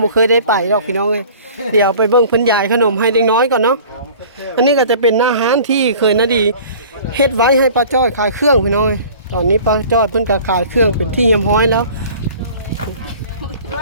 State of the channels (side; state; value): both; inverted; correlation -0.46